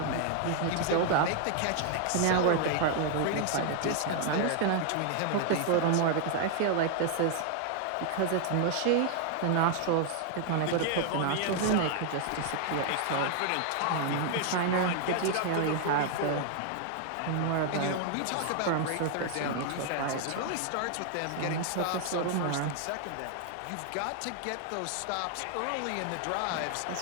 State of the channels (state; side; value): different; both; correlation 0.00